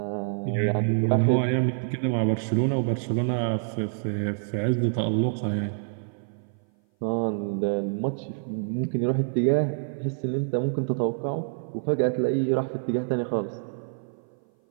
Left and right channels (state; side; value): silent; left; 57 dB below the other